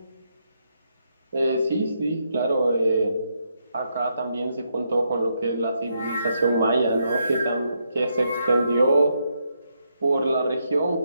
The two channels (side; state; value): both; inverted; correlation -0.79